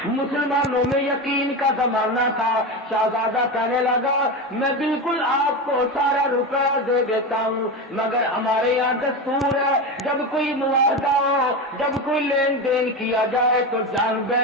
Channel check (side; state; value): both; normal; correlation 0.20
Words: مسلمانوں میں یقین کا زمانہ تھا۔ شہزادہ کہنے لگا میں بالکل آپ کو سارا روپیہ دے دیتا ہوں، مگر ہمارے یہاں دستور ہے جب کوئی معاہدہ ہو، جب کوئی لین دین کیا جائے تو جان